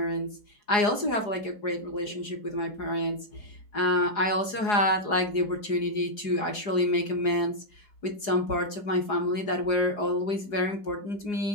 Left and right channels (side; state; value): right; late; 4.8 ms